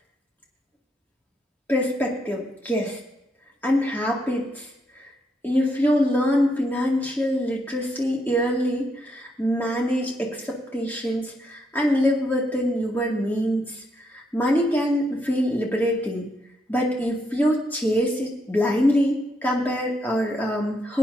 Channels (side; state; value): both; normal; correlation 0.77